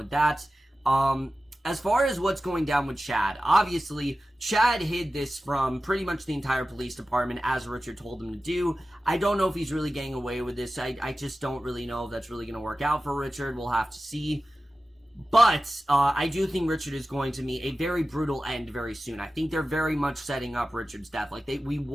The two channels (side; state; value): both; normal; correlation 0.95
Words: that. as far as what's going down with Chad, obviously, Chad hid this from pretty much the entire police department, as Richard told him to do. I don't know if he's really getting away with this. I just don't really know if that's really going to work out for Richard. We'll have to see. But I do think Richard is going to meet a very brutal end very soon. I think they're very much setting up Richard's death. Like, we